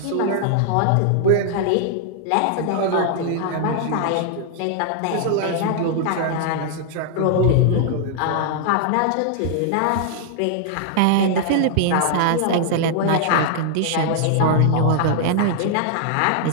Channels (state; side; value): different; both; correlation -0.01